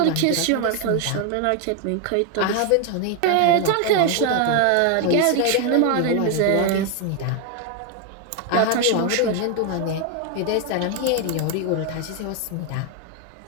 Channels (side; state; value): both; different; correlation 0.01